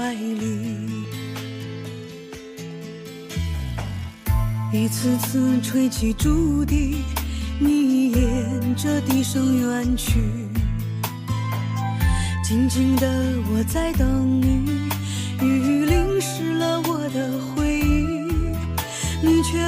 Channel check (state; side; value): identical; both; correlation 1.00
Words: 里。一次次吹起竹笛，你沿着笛声远去，静静的我在等你，雨淋湿了我的